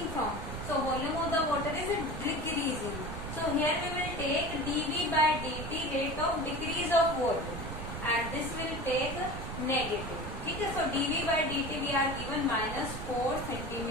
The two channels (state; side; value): noise; right; rumble, 7 dB below the sound